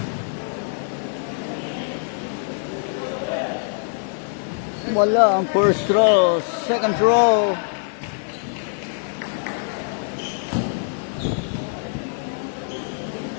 Wala ang first throw. Second throw.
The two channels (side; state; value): right; silent; 63 dB below the other